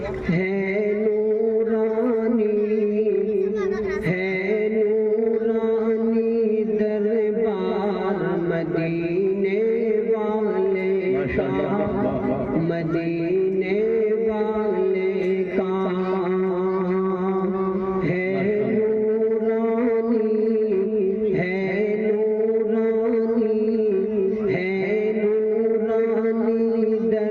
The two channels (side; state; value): both; identical; correlation 1.00